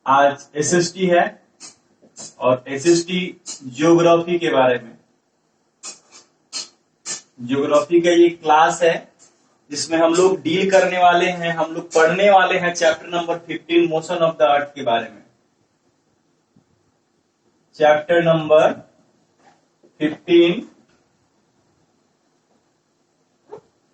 आज एसएसटी है और एसएसटी ज्योग्राफी के बारे में। ज्योग्राफी का ये क्लास है जिसमें हम लोग डील करने वाले हैं, हम लोग पढ़ने वाले हैं chapter number 15 motion of the अर्थ के बारे में। Chapter number 15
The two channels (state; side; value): identical; both; correlation 1.00